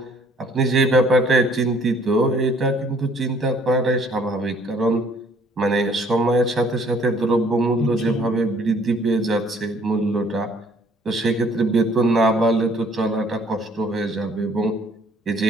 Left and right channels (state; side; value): normal; both; correlation 0.59